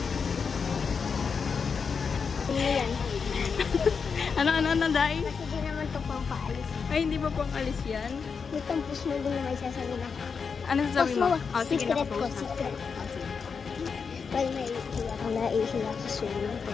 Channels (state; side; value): quieter; right; 5.7 dB